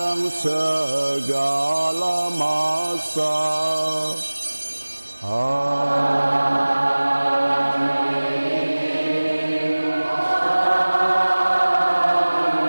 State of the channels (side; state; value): both; inverted; correlation -1.00